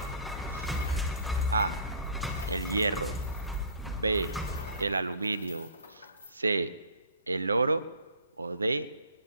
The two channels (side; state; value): both; inverted; correlation -0.48